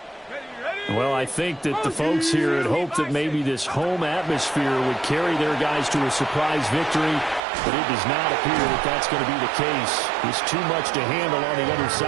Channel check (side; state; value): left; drops out; at 7.4 s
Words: Well, I think that the folks here had hoped that maybe this home atmosphere would carry their guys to a surprise victory, but it does not appear that that's going to be the case. There's too much to handle on the other